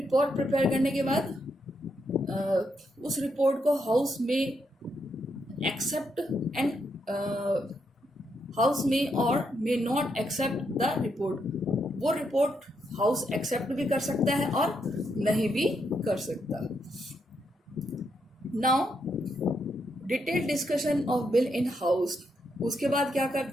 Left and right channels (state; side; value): normal; both; correlation 0.79